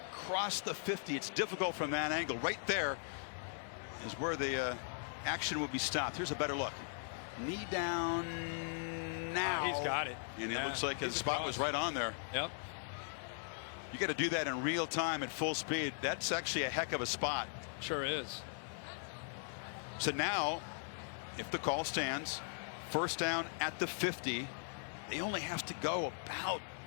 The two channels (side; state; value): right; silent; 52 dB below the other